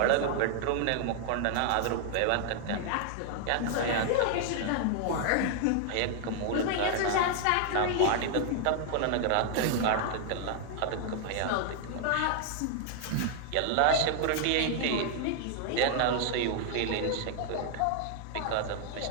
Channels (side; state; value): both; different; correlation 0.00